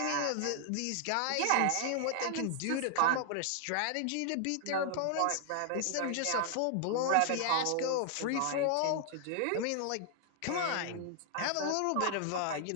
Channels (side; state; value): both; different; correlation 0.00